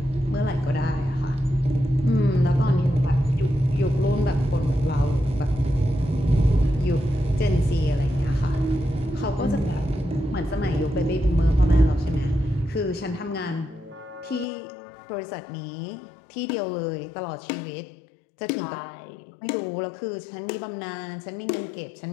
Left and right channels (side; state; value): right; drops out; at 14.5 s